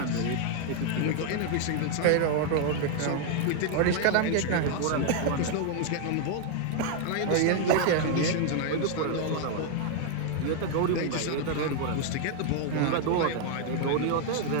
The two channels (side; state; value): both; different; correlation 0.00